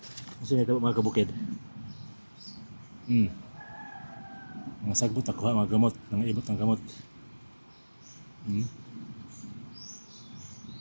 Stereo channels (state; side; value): inverted; both; correlation -1.00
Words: Kasi nito mga kabukid. Mga sagbot ako mga gamot, mga ibot ng gamot.